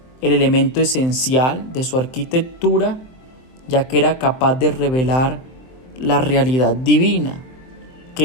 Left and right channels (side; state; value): right; late; 23 ms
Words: el elemento esencial de su arquitectura, ya que era capaz de revelar la realidad divina,